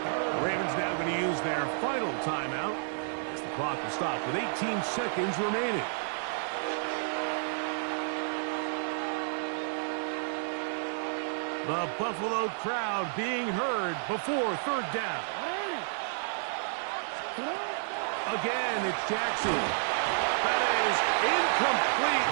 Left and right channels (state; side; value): silent; left; digital silence